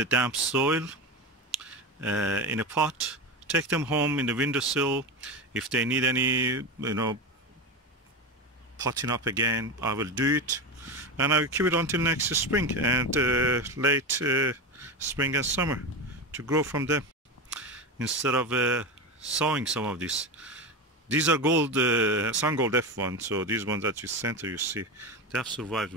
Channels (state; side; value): normal; both; correlation 0.20